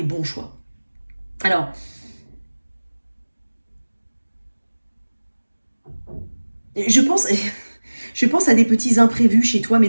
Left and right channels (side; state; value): both; inverted; correlation -1.00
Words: bons choix. Alors, je pense, je pense à des petits imprévus chez toi, mais